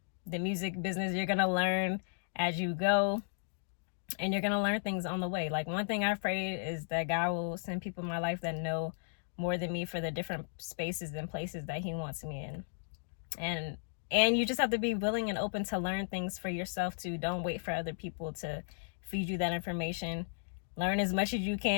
music business. You're going to learn as you go, and you're going to learn things on the way. Like, one thing I've prayed is that God will send people in my life that know more than me for the different spaces and places that he wants me in. And you just have to be willing and open to learn things for yourself too. Don't wait for other people to feed you that information. Learn as much as you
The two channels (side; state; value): right; silent; digital silence